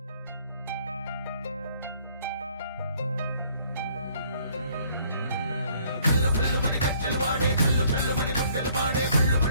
కల్లు కల్లు మని గజ్జలు వాడే కల్లు కల్లు మని గుండెలు పాడే కల్లు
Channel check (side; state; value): both; inverted; correlation -0.62